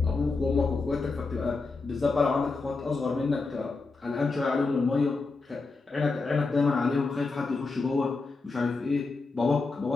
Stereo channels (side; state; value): right; quieter; 3.9 dB